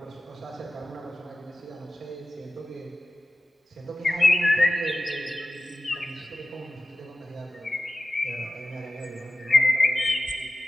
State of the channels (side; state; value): both; normal; correlation 0.94